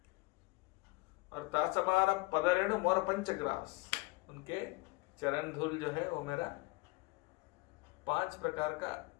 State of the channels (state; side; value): quieter; right; 24.4 dB